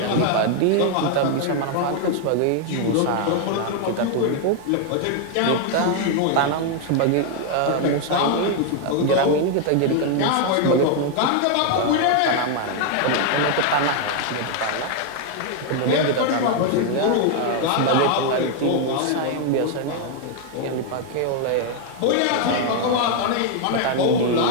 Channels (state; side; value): different; both; correlation 0.00